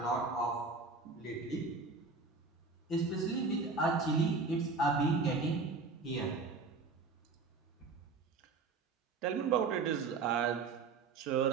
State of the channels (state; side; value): quieter; left; 4.2 dB